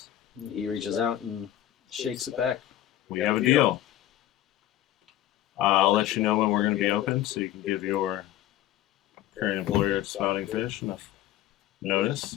He reaches out and shakes it back. We have a deal. I'll let you know when we're going to be open so you can give your current employer at Spouting Fish enough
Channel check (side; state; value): right; quieter; 13.2 dB